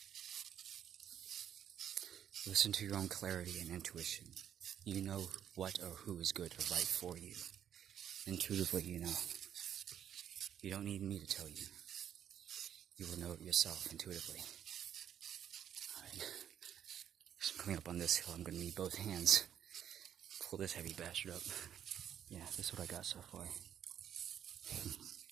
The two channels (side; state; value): left; quieter; 9.5 dB